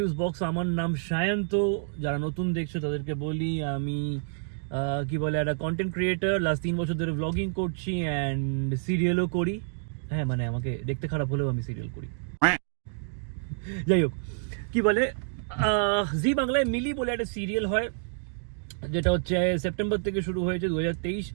box. আমার নাম সায়ন্ত। যারা নতুন দেখছো তাদেরকে বলি আমি কি বলে একটা কন্টেন্ট ক্রিয়েটার। লাস্ট 3 বছর ধরে ব্লগিং করছি অ্যান্ড সিরিয়ালও করি। হ্যাঁ, মানে আমাকে দেখতে খারাপ হলেও আমি সিরিয়াল করি। যাই হোক, কি বলে জি বাংলায় মিলি বলে একটা সিরিয়াল হয়, যেটা হচ্ছে সেপ্টেম্বর থেকে শুরু হয়েছে 2023।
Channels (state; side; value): silent; left; digital silence